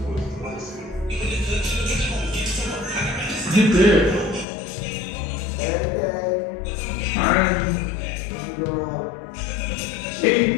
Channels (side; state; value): right; drops out; at 4.5 s